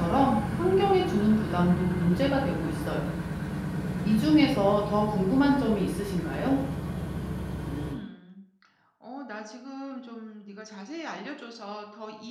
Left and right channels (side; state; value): both; identical; correlation 1.00